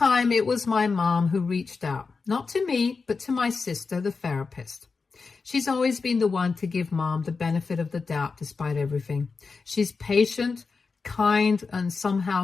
it was my mom who reached out, not to me, but to my sister, the therapist. She's always been the one to give Mom the benefit of the doubt despite everything. She's patient, kind, and somehow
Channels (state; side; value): quieter; right; 4.6 dB